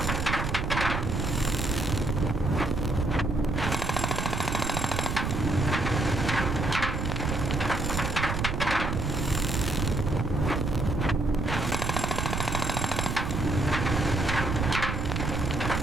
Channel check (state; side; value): noise; right; rumble, 1 dB below the sound